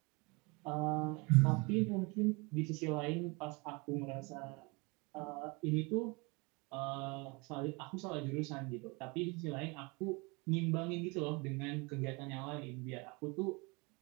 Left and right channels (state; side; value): quieter; left; 28.2 dB